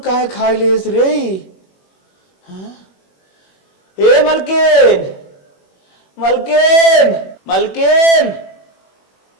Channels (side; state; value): right; late; 21 ms